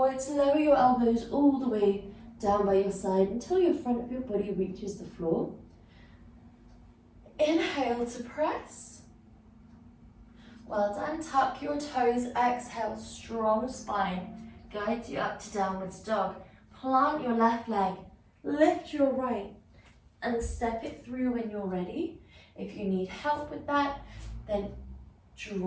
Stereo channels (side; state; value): both; identical; correlation 1.00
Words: lower your elbows all the way down by your side until your front of your body reaches the floor. Inhale to press. Well done. Tuck your toes. Exhale, strong spine. Guides you up to downwards dog. Plant your left leg. Lift your right and step it through when you're ready. If you need help with that, then